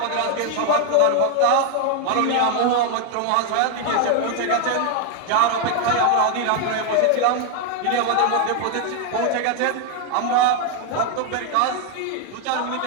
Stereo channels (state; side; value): different; both; correlation 0.01